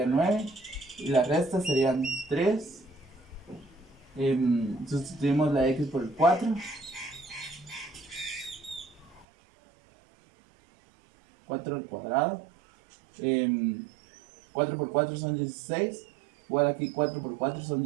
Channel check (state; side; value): drops out; left; at 9.2 s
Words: 9. Y la resta serían 3. Sustituimos la x por el 4. 4 al cuadrado. 4 por 4 son 16. Igual aquí 4 por 4 son